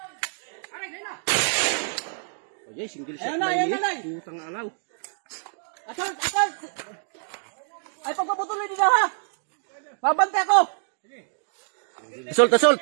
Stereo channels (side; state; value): left; silent; digital silence